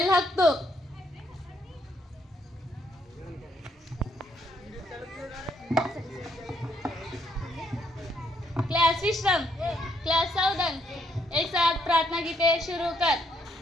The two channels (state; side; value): normal; both; correlation 0.72